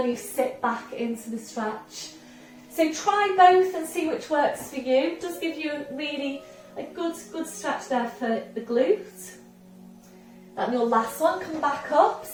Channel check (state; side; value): identical; both; correlation 1.00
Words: you sit back into the stretch. So try both and see which works for you. It does give you a good stretch there for the glute. And your last one, come back up.